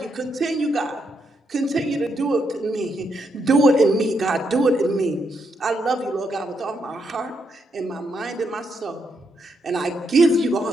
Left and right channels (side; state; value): both; normal; correlation 0.79